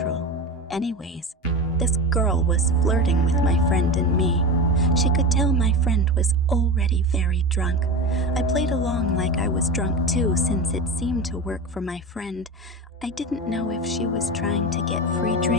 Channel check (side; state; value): both; normal; correlation 0.25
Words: Anyways, this girl was flirting with my friend and me. She could tell my friend was already very drunk. I played along like I was drunk too, since it seemed to work for my friend. I didn't know if she was trying to get free